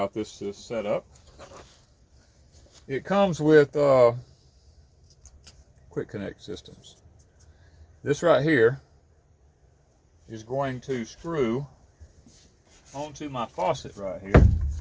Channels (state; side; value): identical; both; correlation 1.00